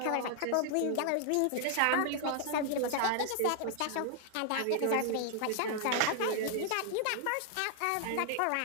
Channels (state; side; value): different; both; correlation 0.00